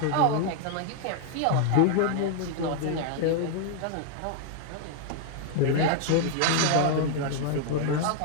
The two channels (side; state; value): both; different; correlation 0.00